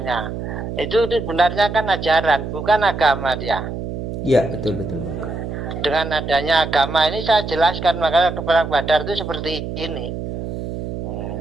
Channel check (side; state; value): right; noise; hum, 6 dB below the sound